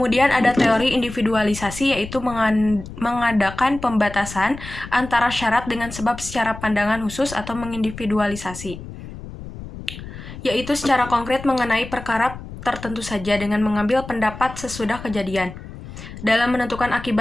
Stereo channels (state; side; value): noise; left; rumble, 13 dB below the sound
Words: ada teori individualisasi yaitu mengadakan pembatasan antara syarat dengan sebab secara pandangan khusus atau mengindividualisasi, yaitu secara konkret mengenai perkara tertentu saja dengan mengambil pendapat sesudah kejadian. Dalam menentukan